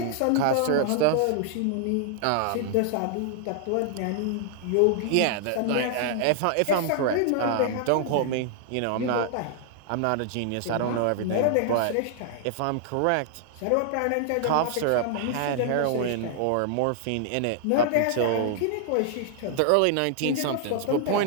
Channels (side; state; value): both; different; correlation -0.01